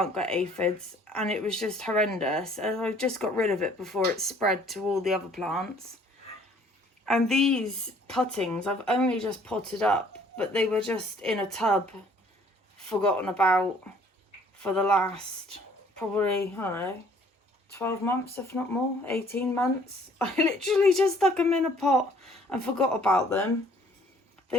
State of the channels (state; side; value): normal; both; correlation 0.58